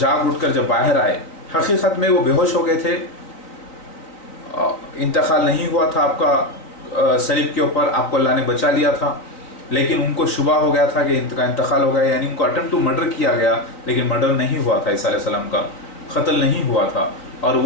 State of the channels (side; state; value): right; late; 4.0 ms